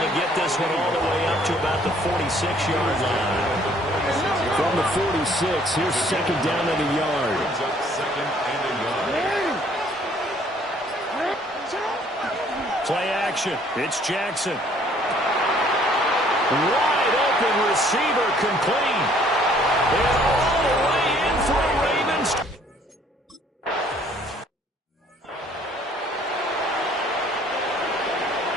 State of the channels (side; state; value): both; normal; correlation 0.60